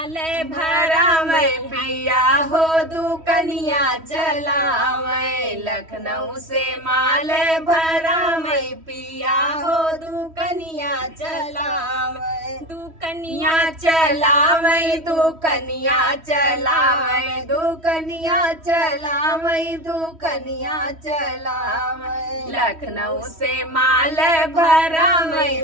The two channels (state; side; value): late; left; 3.1 ms